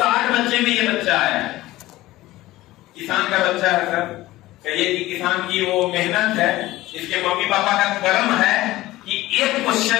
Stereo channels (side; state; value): right; quieter; 17.2 dB